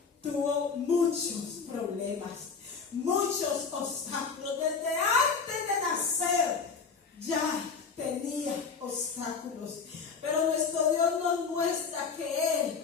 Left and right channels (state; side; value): quieter; right; 5.4 dB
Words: tuvo muchos problemas, muchos obstáculos. Desde antes de nacer ya tenía obstáculos. Pero nuestro Dios nos muestra que Él,